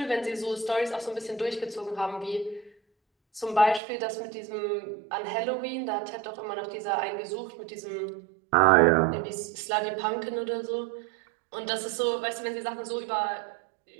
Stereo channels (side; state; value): left; drops out; at 3.8 s